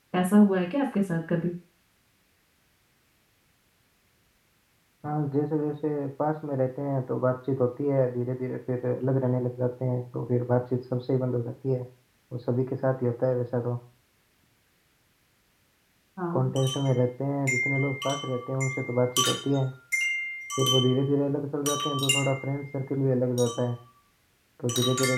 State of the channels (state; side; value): identical; both; correlation 1.00